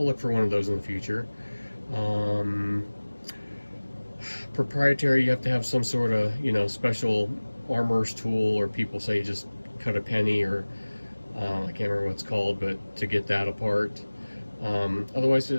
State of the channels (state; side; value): inverted; both; correlation -1.00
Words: look for one of those in the future. Proprietary, you have to have some sort of, you know, special armorer's tool, or people say just cut a penny, or I can't remember what it's called, but to get that apart. Otherwise,